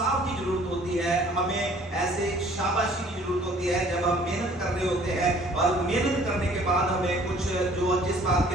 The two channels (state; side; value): normal; both; correlation 0.55